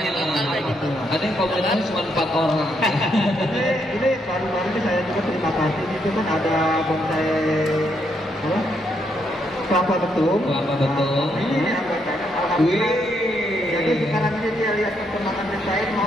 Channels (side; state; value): both; normal; correlation 0.76